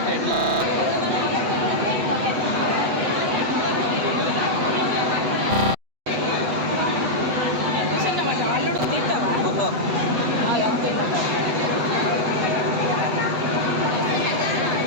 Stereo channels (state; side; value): late; left; 8.0 ms